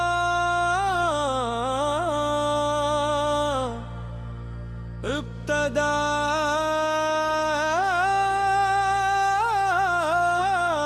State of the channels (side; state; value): both; identical; correlation 1.00